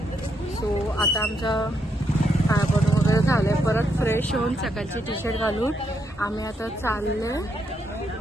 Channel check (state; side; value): normal; both; correlation 0.78